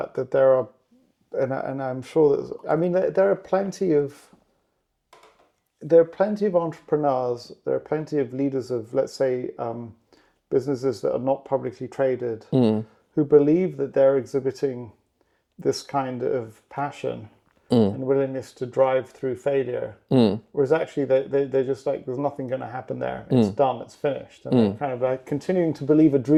there are, and I'm sure that, I mean, there are plenty of entrepreneurs, there are plenty of leaders of, let's say, businesses that are not publicly traded, who believe that they're exhibiting this kind of passion and willingness to drive through failure, whereas actually they're just like, there's nothing going to happen there. It's done. It's finished, and they're kind of like continuing to believe a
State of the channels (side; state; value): both; identical; correlation 1.00